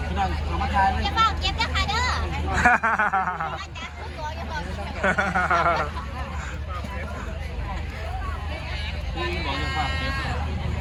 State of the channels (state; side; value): identical; both; correlation 1.00